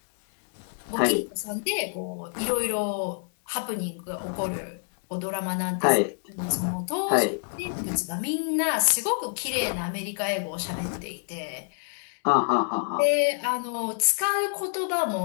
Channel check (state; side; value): silent; right; digital silence